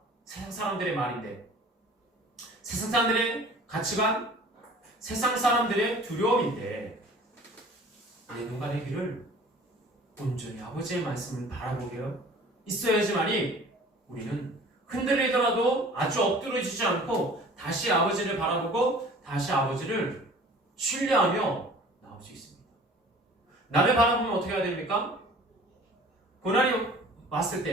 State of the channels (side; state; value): both; normal; correlation 0.47